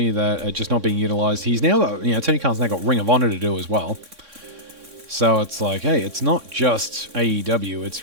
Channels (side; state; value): left; late; 3.6 ms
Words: that are just not being utilized. He's now got, Tony Khan's now got Ring of Honor to do as well. So it's like, hey, it's not just AEW.